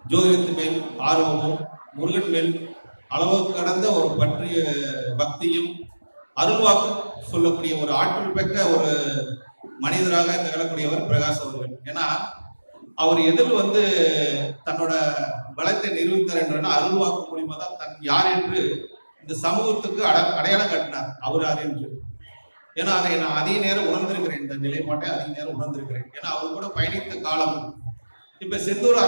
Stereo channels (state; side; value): inverted; both; correlation -1.00